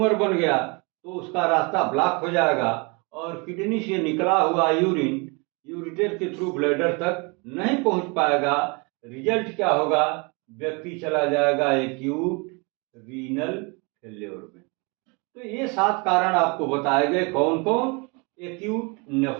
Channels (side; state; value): left; quieter; 30.4 dB